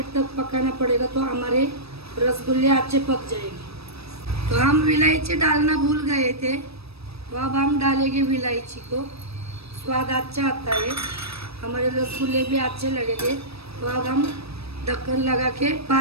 तक पकाना पड़ेगा। तो हमारे रसगुल्ले अच्छे पक जाएंगे। तो हम इलायची डालना भूल गए थे, तो अब हम डालेंगे इलायची को, स्वाद अच्छा आता है, हमारे रसगुल्ले भी अच्छे लगेंगे। तो अब हम ढक्कन लगा के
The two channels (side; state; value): left; late; 0.78 ms